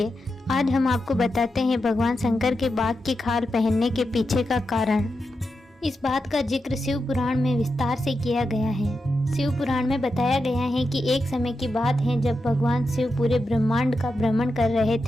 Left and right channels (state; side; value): normal; both; correlation 0.88